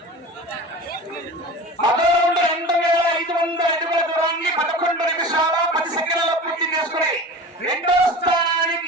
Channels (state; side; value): normal; both; correlation 0.34